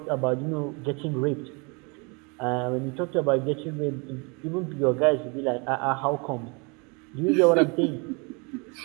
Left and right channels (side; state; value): left; quieter; 31.2 dB